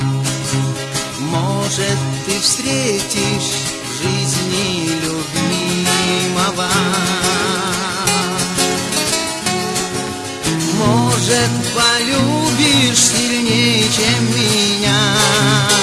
Может, ты встретишь в жизни любимого, может, полюбишь сильнее, чем меня.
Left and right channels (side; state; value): both; identical; correlation 1.00